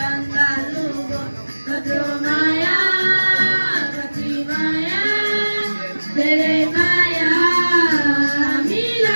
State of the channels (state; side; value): inverted; both; correlation -1.00